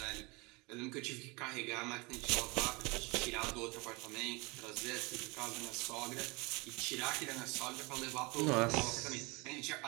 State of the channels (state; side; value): quieter; left; 26.6 dB